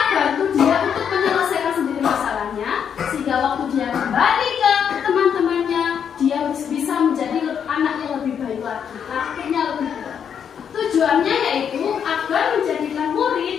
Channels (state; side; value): quieter; right; 7.8 dB